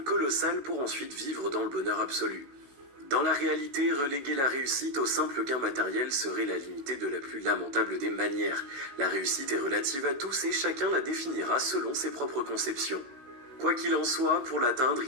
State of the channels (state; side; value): late; left; 16 ms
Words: colossales pour ensuite vivre dans le bonheur absolu. Dans la réalité, reléguer la réussite au simple gain matériel serait la limiter de la plus lamentable des manières. La réussite est relative à tous et chacun la définira selon ses propres conceptions. Quoi qu'il en soit, pour l'atteindre,